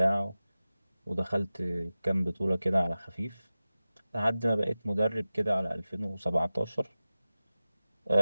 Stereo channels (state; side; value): inverted; both; correlation -0.96